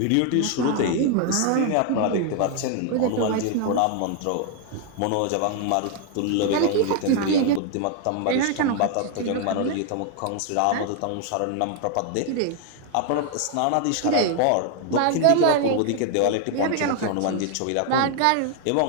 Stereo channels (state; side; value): different; both; correlation 0.00